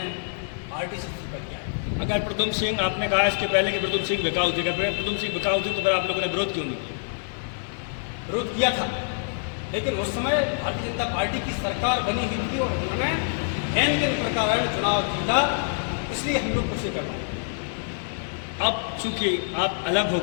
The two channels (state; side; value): silent; right; digital silence